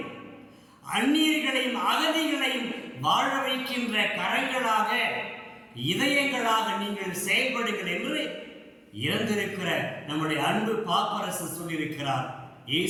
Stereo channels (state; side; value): identical; both; correlation 1.00